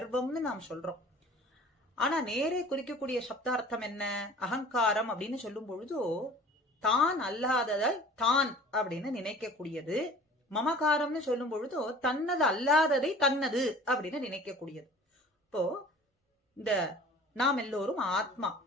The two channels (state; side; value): normal; both; correlation 0.46